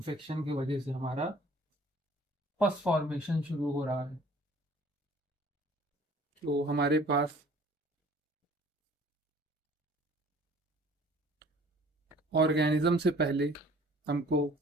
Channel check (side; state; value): both; normal; correlation 0.52